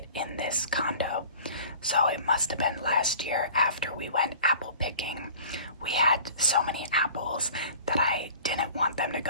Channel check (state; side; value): inverted; both; correlation -0.45